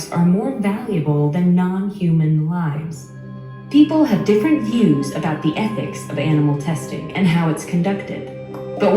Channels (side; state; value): both; identical; correlation 1.00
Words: are more valuable than non-human lives. People have different views about the ethics of animal testing and how it's conducted. But